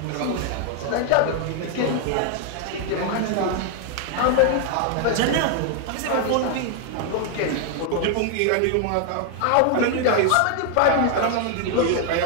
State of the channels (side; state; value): both; different; correlation 0.00